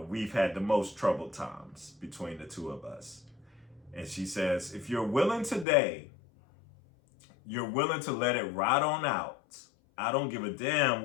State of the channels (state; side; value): drops out; right; at 5.7 s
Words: had the most troubled times between the two of us. And she says, if you're willing today, you're willing to let it ride on out. I don't give a damn